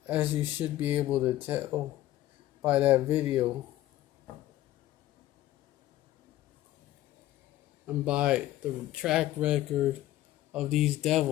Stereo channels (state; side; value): quieter; right; 14.7 dB